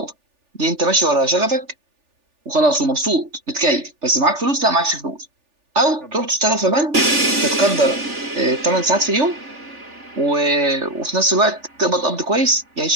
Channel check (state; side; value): late; left; 3.4 ms